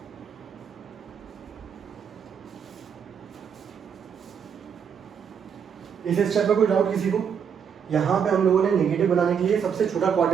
इस स्टेप में कोई डाउट किसी को? यहाँ पे हम लोगों ने नेगेटिव बनाने के लिए सबसे छोटा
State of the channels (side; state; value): left; quieter; 7.3 dB